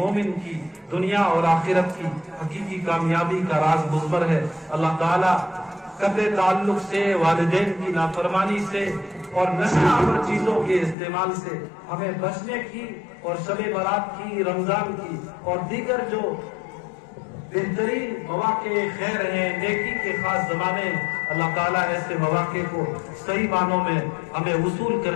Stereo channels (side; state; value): right; drops out; at 11.0 s